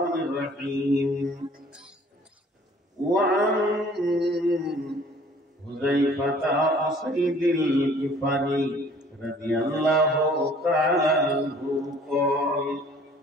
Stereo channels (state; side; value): normal; both; correlation 0.54